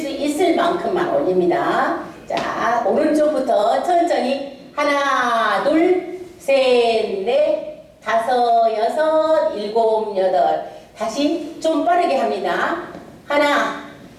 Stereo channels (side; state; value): both; identical; correlation 1.00